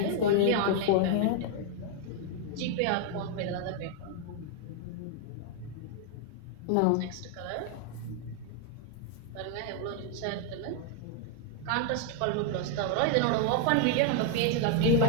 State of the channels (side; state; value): both; different; correlation 0.00